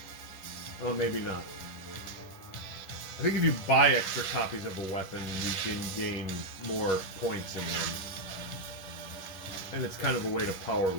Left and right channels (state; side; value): late; right; 11 ms